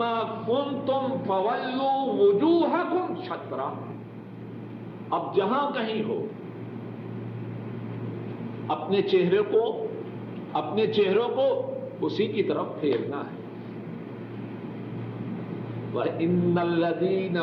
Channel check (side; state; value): both; identical; correlation 1.00